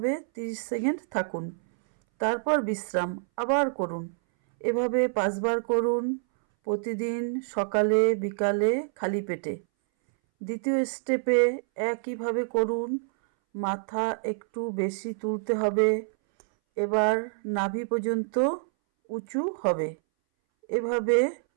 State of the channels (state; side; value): silent; left; 60 dB below the other